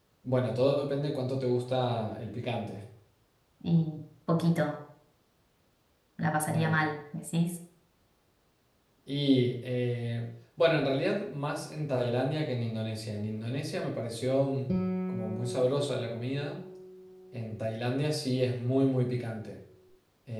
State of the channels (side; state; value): both; identical; correlation 1.00